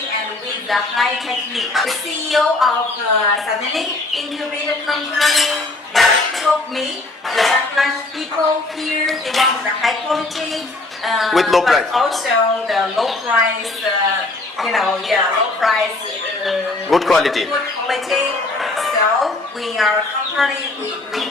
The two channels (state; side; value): quieter; right; 3.1 dB